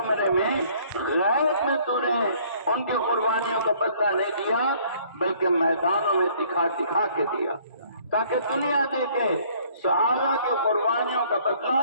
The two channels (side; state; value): both; inverted; correlation -0.59